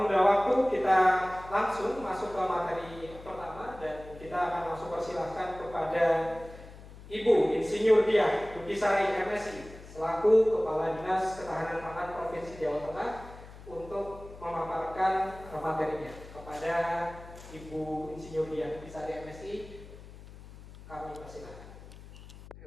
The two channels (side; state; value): left; noise; hum, 17 dB below the sound